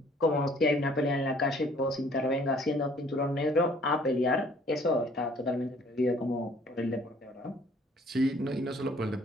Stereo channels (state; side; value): normal; both; correlation 0.57